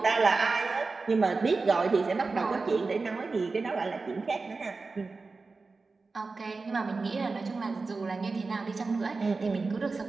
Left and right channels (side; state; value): left; quieter; 4.0 dB